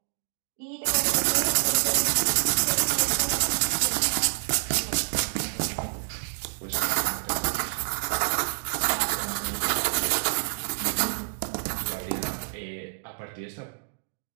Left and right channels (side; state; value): left; silent; digital silence